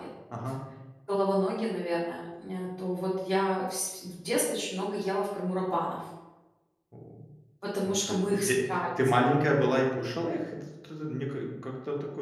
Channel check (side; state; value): both; identical; correlation 1.00